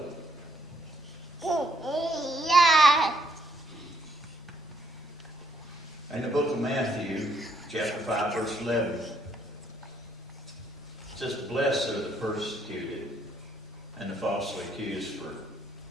In the book of Matthew, chapter 5, verse 11, it says, "Blessed are the persecuted and the falsely accused for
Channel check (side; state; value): both; normal; correlation 0.71